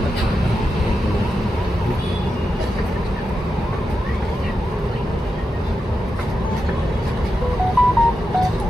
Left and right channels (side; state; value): both; normal; correlation 0.88